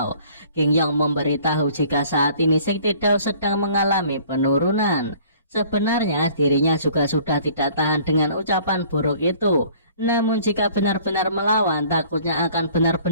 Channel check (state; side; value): inverted; both; correlation -0.53